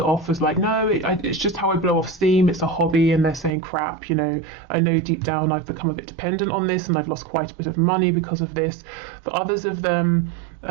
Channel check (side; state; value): left; drops out; at 3.5 s